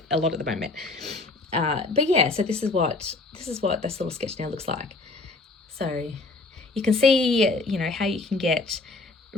a lot at the moment. But yeah, so this is what this little sketch now looks like. So you can see, you know, how you can get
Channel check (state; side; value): quieter; right; 3.4 dB